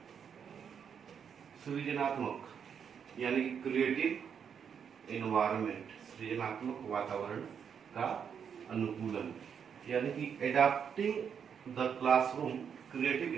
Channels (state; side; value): quieter; left; 7.4 dB